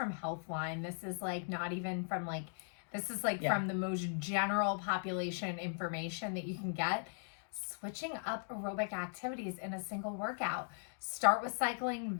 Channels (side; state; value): right; silent; digital silence